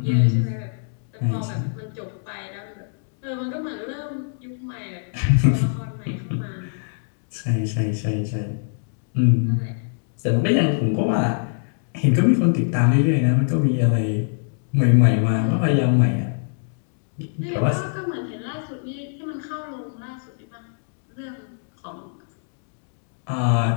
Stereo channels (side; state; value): right; silent; digital silence